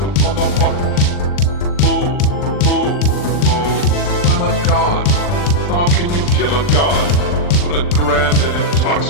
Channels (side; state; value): right; late; 40 ms